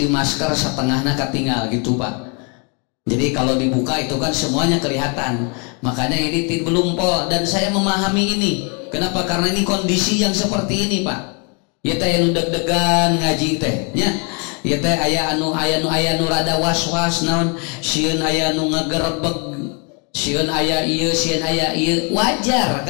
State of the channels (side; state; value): right; quieter; 35.3 dB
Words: masker setengahnya katinggal gitu Pak. Jadi kalau dibuka itu kan semuanya kelihatan. Makanya ini belum pol, dan saya memahami ini. Kenapa? Karena ini kondisi yang seperti ini Pak. Ya teh anu deg-degan ngaji teh nya. Ya teh aya anu rada was-was naon, sieun aya anu ngagerebeg, sieun aya ieu, sieun aya ieu. Wajar.